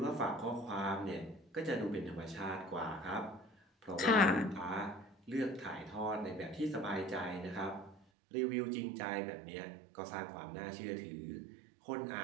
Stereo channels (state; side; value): drops out; left; at 8.0 s